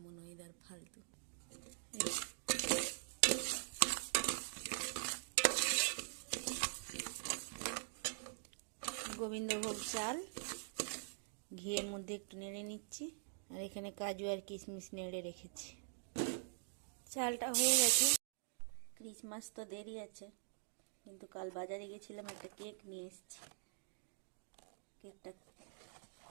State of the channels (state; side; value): silent; left; digital silence